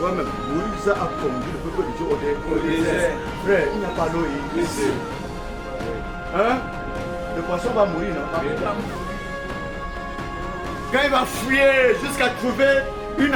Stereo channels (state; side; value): identical; both; correlation 1.00